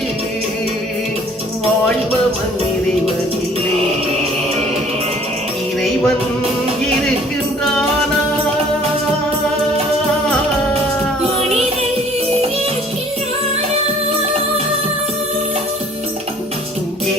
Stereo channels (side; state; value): both; normal; correlation 0.54